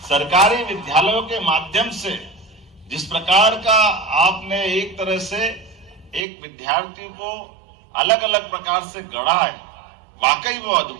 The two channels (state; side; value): drops out; left; at 6.2 s